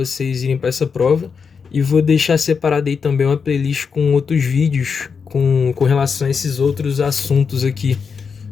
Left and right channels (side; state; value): right; quieter; 5.8 dB